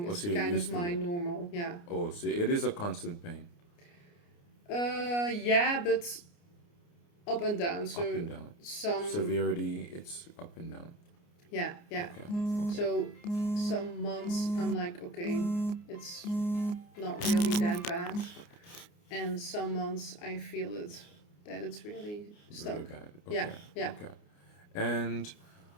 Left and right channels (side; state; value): right; late; 29 ms